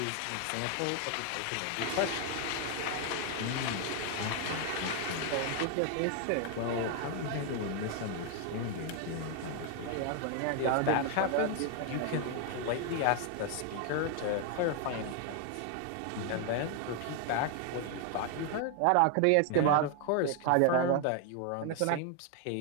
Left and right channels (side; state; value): both; different; correlation 0.00